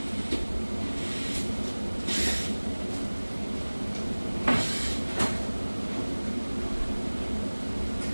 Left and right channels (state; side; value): inverted; both; correlation -1.00